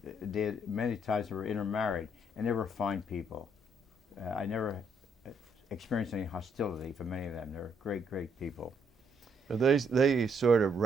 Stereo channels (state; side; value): normal; both; correlation 0.71